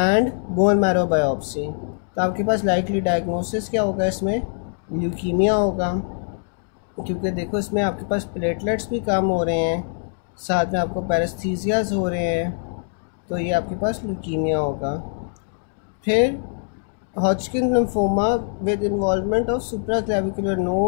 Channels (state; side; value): silent; right; digital silence